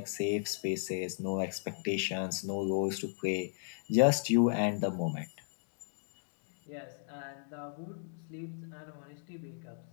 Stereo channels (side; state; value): right; silent; digital silence